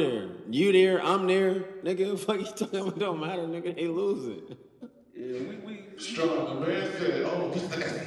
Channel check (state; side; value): identical; both; correlation 1.00